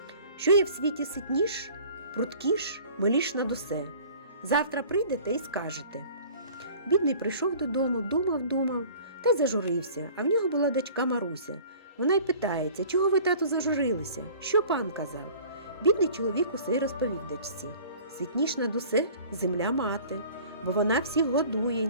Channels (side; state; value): both; inverted; correlation -0.47